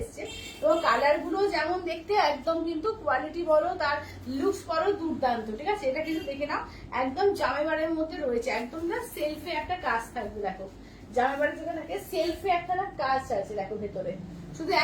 এবং কালার গুলো যেমন দেখতে একদম কিন্তু কোয়ালিটি বলো, তার লুকস বলো দুর্দান্ত। ঠিক আছে, এটা কিন্তু দেখে নাও, একদম জামাইবারের মধ্যে রয়েছে, একদম না সেলফে একটা কাজ থাকবে, দেখো জামাইবাড়ি থেকে থাকে সেলফে একটা না কাজ আছে, দেখো ভেতরে শুধু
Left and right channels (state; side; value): identical; both; correlation 1.00